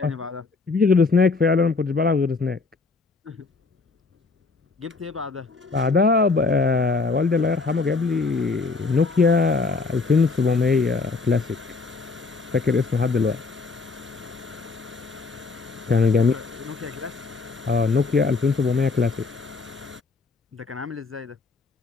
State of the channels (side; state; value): right; quieter; 4.1 dB